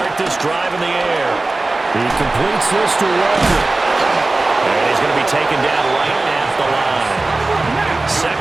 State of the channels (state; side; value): quieter; left; 3.1 dB